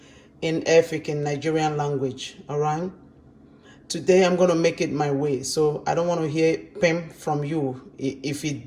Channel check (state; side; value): identical; both; correlation 1.00